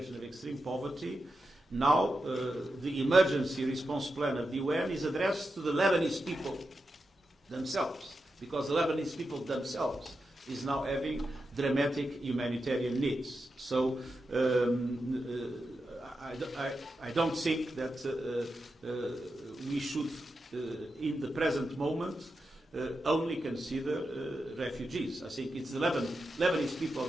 of extreme poverty. Now the emergency response plan of the UN is addressed to the Lebanese people themselves, because the Lebanese people themselves is now having dramatic humanitarian needs. So I don't think that we should, in the present moment, only consider refugees. I think it's the Lebanese people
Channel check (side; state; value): both; normal; correlation 0.89